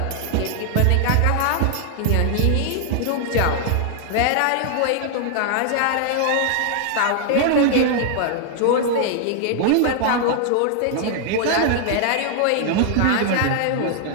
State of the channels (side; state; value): both; different; correlation 0.00